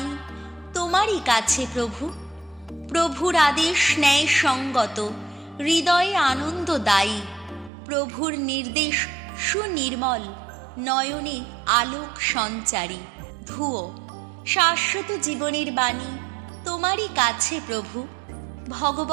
তোমারই কাছে প্রভু। প্রভুর আদেশ ন্যায় সঙ্গত, হৃদয়ে আনন্দদায়ী। প্রভুর নির্দেশ সুনির্মল, নয়নে আলোক সঞ্চারী। ধুয়ো। শাশ্বত জীবনের বাণী তোমারই কাছে প্রভু।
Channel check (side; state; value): left; drops out; at 7.7 s